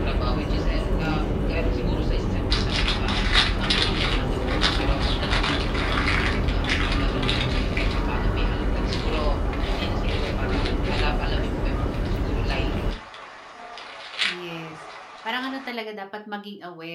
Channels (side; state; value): both; identical; correlation 1.00